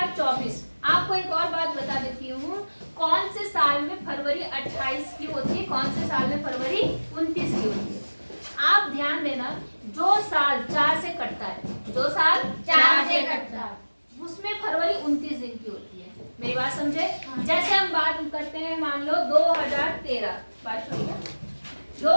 आपको एक और बात बता देती हूँ, कौन से साल में फरवरी 28 की होती है, कौन से साल में फरवरी 29 की होती है? आप ध्यान देना, जो साल 4 से कटता है, जो साल 4 से कटता है, उसमें फरवरी 29 दिन की होती है। मेरी बात समझे? जैसे हम बात करते हैं, मान लो 2013, बात सुनिए,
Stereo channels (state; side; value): inverted; both; correlation -1.00